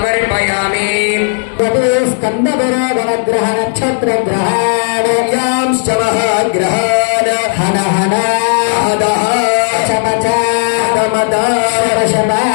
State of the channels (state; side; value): silent; right; digital silence